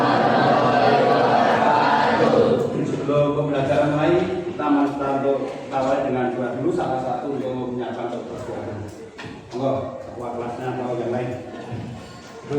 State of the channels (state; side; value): identical; both; correlation 1.00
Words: Sebelum pembelajaran mulai, kita untuk awali dengan doa dulu. Salah satu untuk menyiapkan persiapan. Monggo, ketua kelasnya atau yang lain.